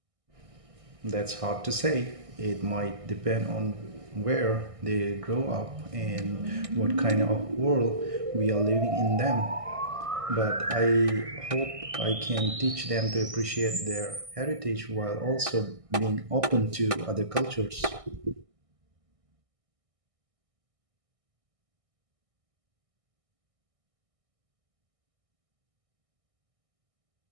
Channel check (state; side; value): late; left; 1.6 ms